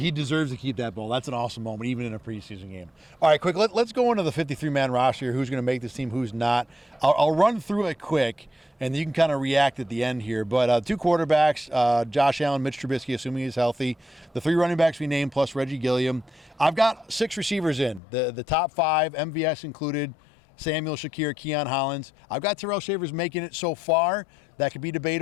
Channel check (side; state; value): right; drops out; at 18.0 s